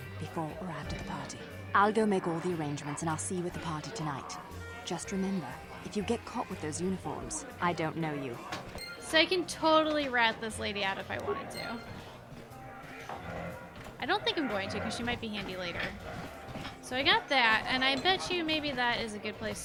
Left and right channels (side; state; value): both; identical; correlation 1.00